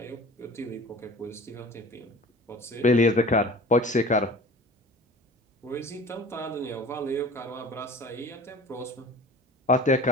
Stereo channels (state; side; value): normal; both; correlation 0.42